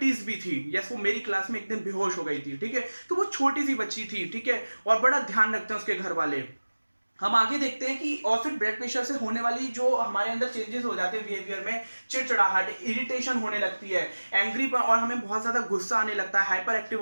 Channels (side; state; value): both; inverted; correlation -1.00